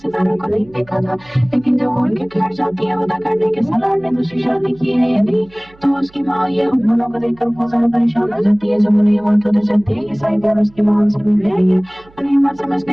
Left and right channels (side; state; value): right; noise; hum, 27 dB below the sound